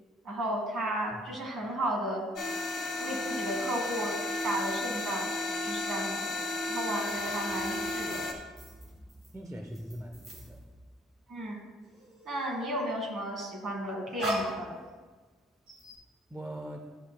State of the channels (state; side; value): normal; both; correlation 0.61